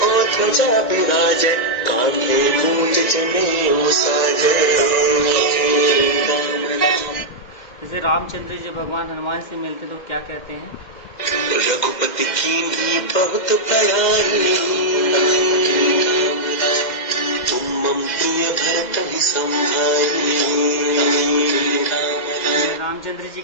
और ध्वजा विराजे, कांधे मूंज जनेऊ साजे। जैसे रामचंद्र जी भगवान हनुमान से मिलते तो क्या कहते हैं, रघुपति कीन्ही बहुत बड़ाई, तुम मम प्रिय भरत ही संभाई। रामचंद्र जी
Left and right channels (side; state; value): right; late; 2.0 ms